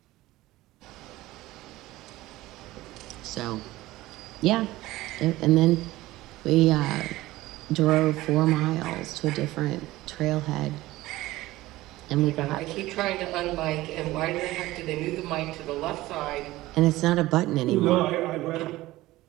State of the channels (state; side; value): quieter; left; 17.5 dB